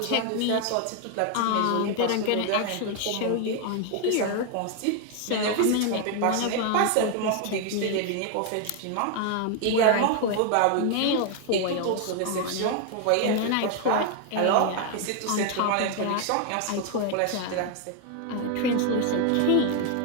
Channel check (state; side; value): different; both; correlation 0.00